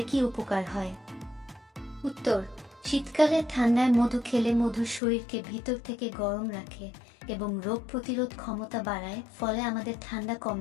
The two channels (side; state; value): right; drops out; at 5.0 s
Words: কি উপকার হয়? উত্তর: শীতকালে ঠান্ডায় মধু খেলে মধু শরীরকে ভিতর থেকে গরম রাখে এবং রোগ প্রতিরোধ ক্ষমতা বাড়ায়, ফলে আমাদের ঠান্ডা কম